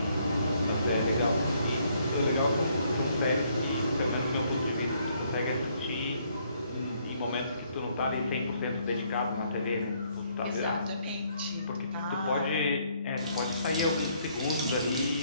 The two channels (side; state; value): both; inverted; correlation -0.68